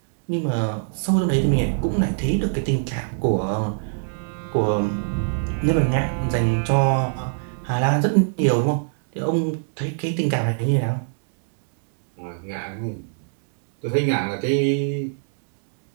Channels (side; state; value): left; silent; digital silence